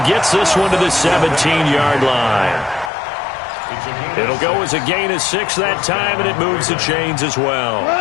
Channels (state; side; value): drops out; right; at 2.9 s